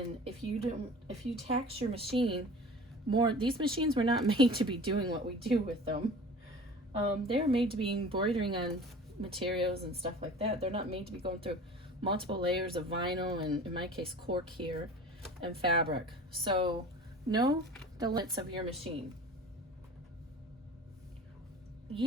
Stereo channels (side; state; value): both; normal; correlation 0.41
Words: if you tax your machine more, these machines were not made to be doing what we do with them. They're made to be embroidering on materials and stuff like that. They're not made to be going through multiple layers of vinyl, and in my case cork here, and fabric. So know the limits of your machine.